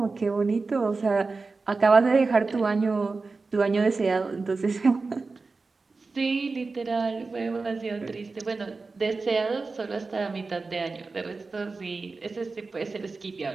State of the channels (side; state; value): left; quieter; 4.0 dB